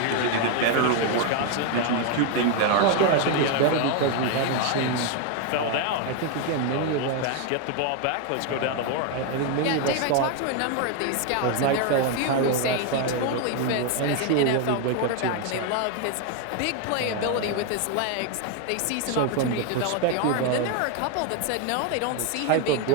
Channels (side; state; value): both; different; correlation 0.01